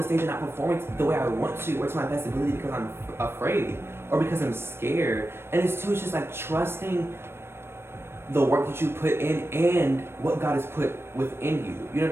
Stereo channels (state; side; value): late; left; 0.12 ms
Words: stage and not performing the way I want to, or to my best ability because I'm afraid. Or because I'm scared. And it's just like trusting the work that you put in and what God has put within you. You know